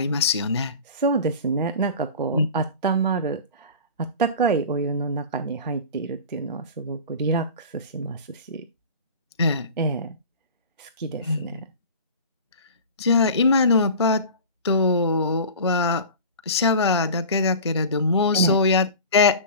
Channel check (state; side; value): inverted; both; correlation -0.36